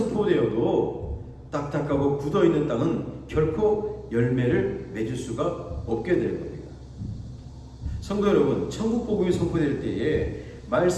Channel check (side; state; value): both; identical; correlation 1.00